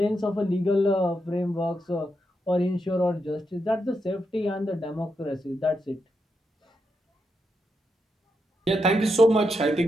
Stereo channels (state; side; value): normal; both; correlation 0.84